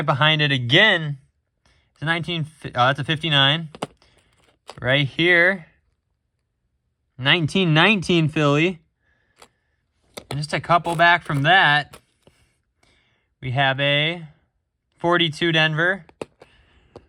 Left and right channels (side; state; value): both; identical; correlation 1.00